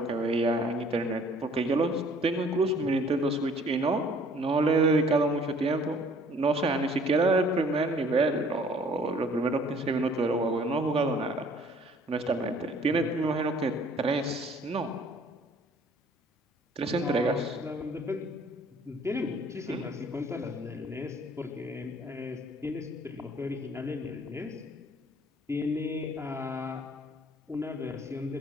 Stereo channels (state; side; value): normal; both; correlation 0.56